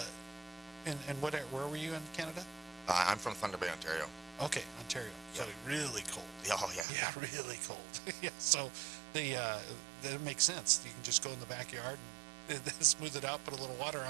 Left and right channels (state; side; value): drops out; left; at 6.9 s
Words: where were you in Canada? I'm from Thunder Bay, Ontario. Okay, Ontario. So really cold. Oh yeah. Yeah, really cold. Yeah. So that makes sense. You can just go in the backyard and smooth it out, put a little water